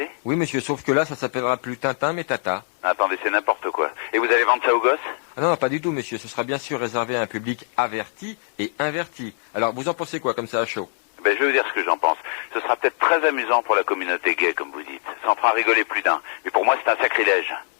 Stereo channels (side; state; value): right; silent; digital silence